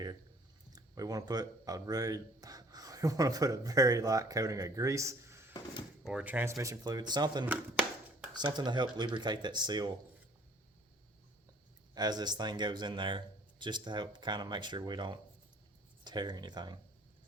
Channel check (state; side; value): normal; both; correlation 0.56